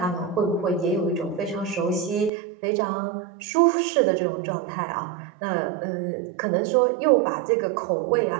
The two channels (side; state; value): left; drops out; at 2.3 s